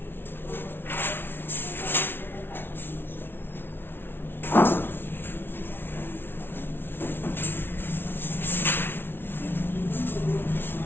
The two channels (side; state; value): right; late; 0.11 ms